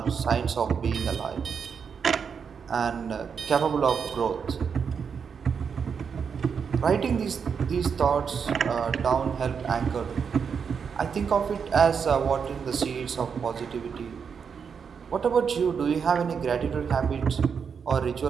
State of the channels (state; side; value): quieter; left; 6.5 dB